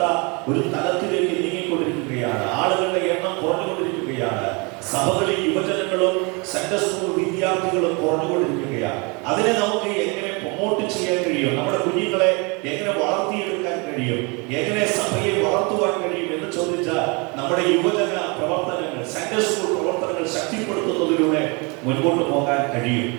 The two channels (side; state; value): left; quieter; 30.2 dB